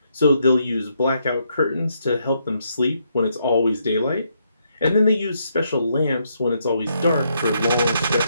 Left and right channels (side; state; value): both; inverted; correlation -0.76